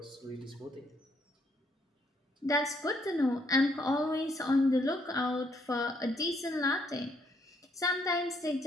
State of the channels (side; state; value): both; normal; correlation 0.71